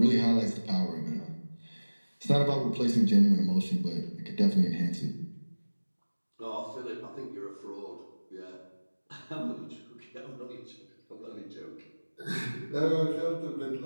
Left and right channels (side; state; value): both; inverted; correlation -1.00